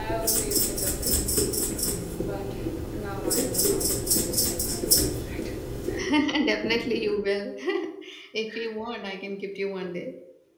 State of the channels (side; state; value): both; identical; correlation 1.00